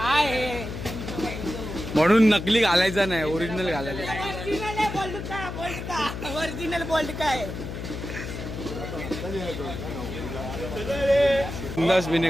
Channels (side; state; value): left; noise; hum, 7 dB below the sound